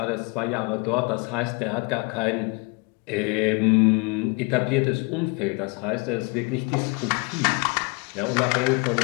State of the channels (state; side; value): quieter; right; 30.7 dB